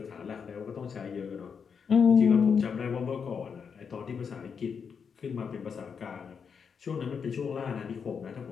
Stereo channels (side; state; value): right; quieter; 6.4 dB